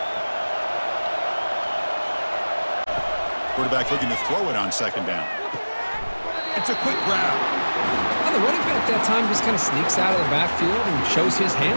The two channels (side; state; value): both; inverted; correlation -1.00